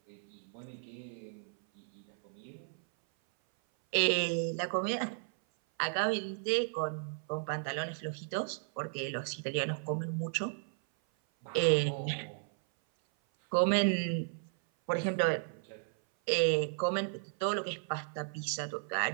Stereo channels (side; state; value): left; silent; 55 dB below the other